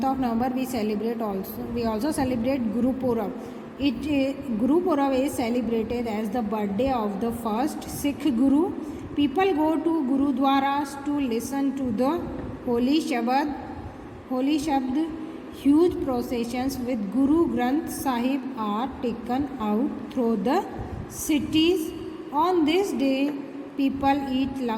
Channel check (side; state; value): both; identical; correlation 1.00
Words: of November we also celebrate Guru Purab. Guru Purab is celebrated as the birthday of the first Sikh Guru. People go to Gurudwaras to listen to the holy Shabad. Huge processions with Guru Granth Sahib are taken out through the cities. On this day, people eat